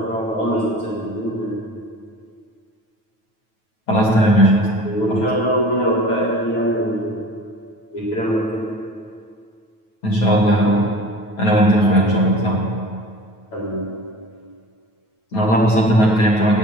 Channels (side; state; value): right; late; 9.2 ms